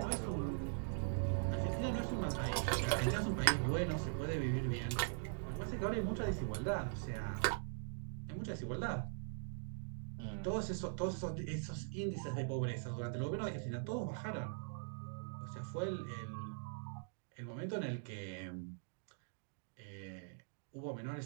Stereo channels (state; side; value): silent; left; digital silence